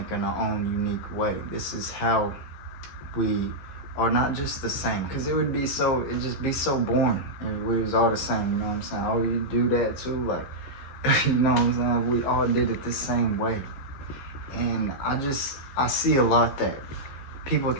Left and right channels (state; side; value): late; right; 15 ms